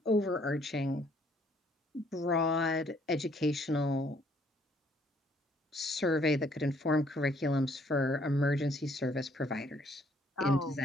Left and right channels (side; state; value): both; normal; correlation 0.65